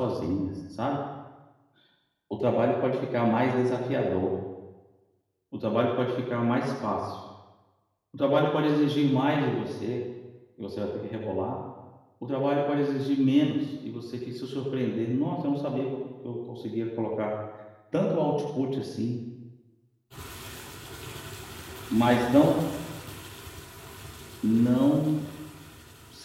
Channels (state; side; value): identical; both; correlation 1.00